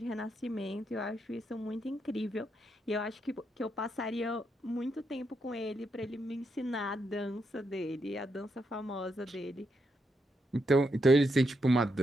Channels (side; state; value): both; normal; correlation 0.81